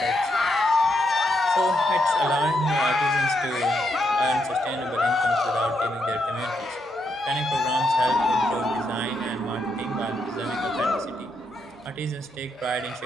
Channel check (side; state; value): both; normal; correlation 0.80